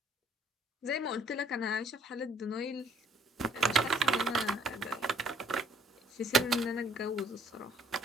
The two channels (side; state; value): both; normal; correlation 0.61